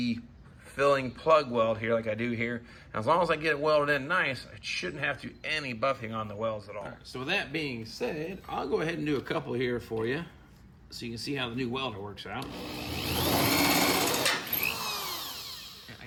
filling plug weld here like I do here. And as long as I get it welded in nice, I shouldn't have to do any buffing on the welds at all. So with that being said, I'll go ahead and do a couple here for you so you can see how the new welder works out. I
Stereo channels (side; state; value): both; identical; correlation 1.00